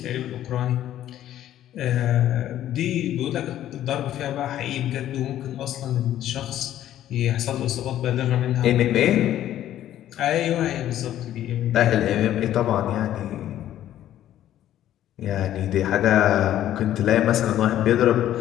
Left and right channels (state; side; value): quieter; right; 12.2 dB